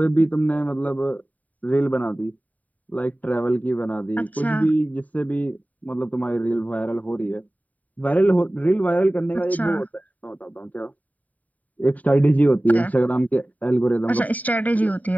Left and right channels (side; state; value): right; late; 0.073 ms